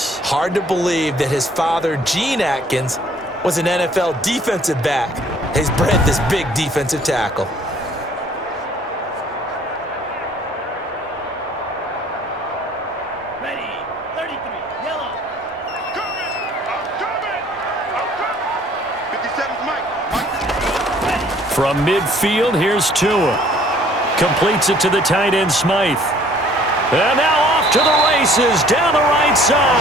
Hard to believe that his father, Gene Atkins, was an NFL defensive back. He's bred this big defensive tackle. Ready. 33. Yellow. I'm coming. 57's Mike. From midfield, here's Tua. Completes it to the tight end, Smythe. And now off to the races, down the right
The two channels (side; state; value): both; normal; correlation 0.57